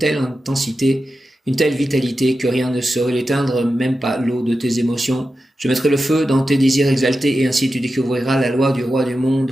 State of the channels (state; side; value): normal; both; correlation 0.91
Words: intensité, une telle vitalité que rien ne saurait l'éteindre, même pas l'eau de tes émotions. Je mettrai le feu dans tes désirs exaltés et ainsi tu découvriras la loi du roi du monde.